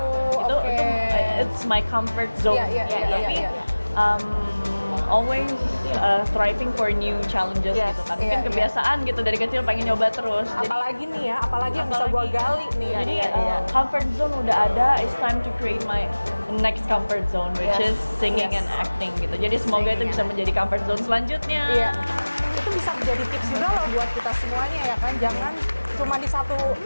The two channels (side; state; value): both; inverted; correlation -1.00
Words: Itu Oke. it's my comfort zone. Iya, Tapi always striving for new challenges Yes. gitu kan. Iya, Mungkin iya. kebiasaan gitu dari kecil pengen nyoba terus. Jadi Apalagi nih ya, apalagi yang bisa gua apalagi- gali nih. jadi Iya. comfort zone udah ada, it's time to create my next comfort zone which Yes. is singing Yes. and acting gitu. Jadi semoga itu Singing bisa and menjadi comfort zone selanjutnya. Iya. Itu bisa menjadi tips juga loh buat kita semuanya ya kan. Jangan cuma di satu